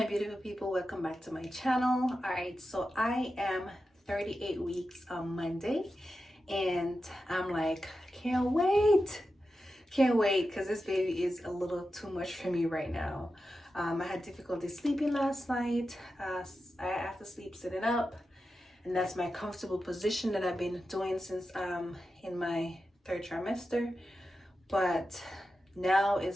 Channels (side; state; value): both; normal; correlation 0.91